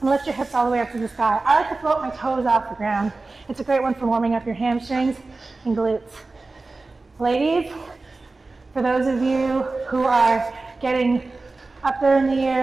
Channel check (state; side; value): quieter; left; 3.5 dB